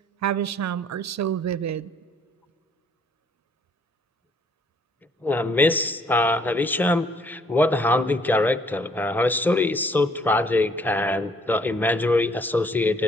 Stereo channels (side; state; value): both; normal; correlation 0.62